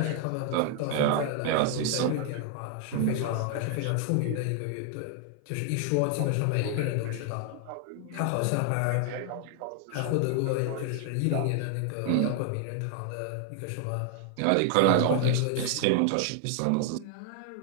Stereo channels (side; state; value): both; different; correlation 0.00